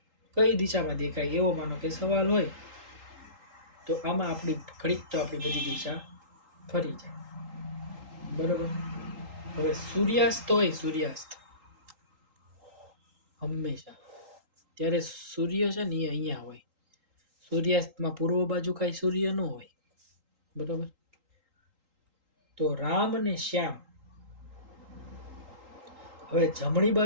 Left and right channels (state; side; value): late; left; 3.8 ms